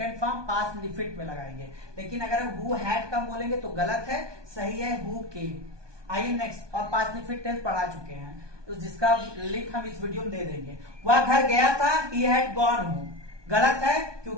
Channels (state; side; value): late; left; 1.2 ms